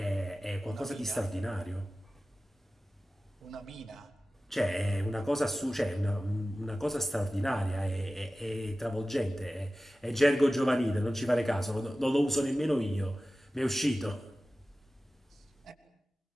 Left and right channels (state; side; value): normal; both; correlation 0.96